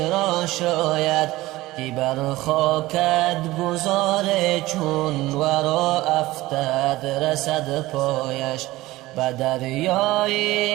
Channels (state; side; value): quieter; left; 18.2 dB